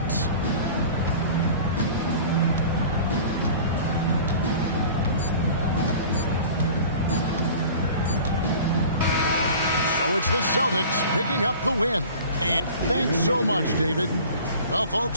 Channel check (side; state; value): both; inverted; correlation -0.42